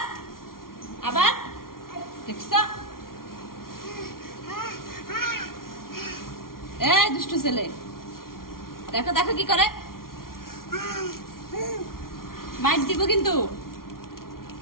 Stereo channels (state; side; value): late; right; 0.92 ms